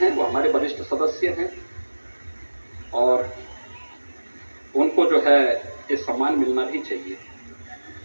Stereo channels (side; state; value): both; inverted; correlation -1.00